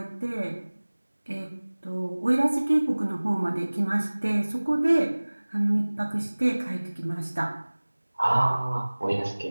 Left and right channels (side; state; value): both; inverted; correlation -1.00